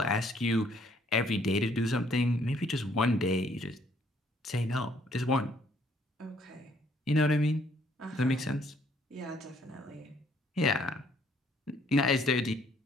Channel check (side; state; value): both; normal; correlation 0.65